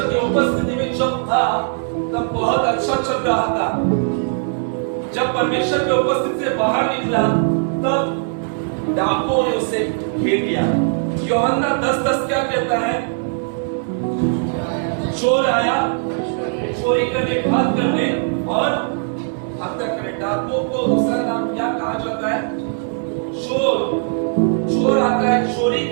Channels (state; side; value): silent; left; digital silence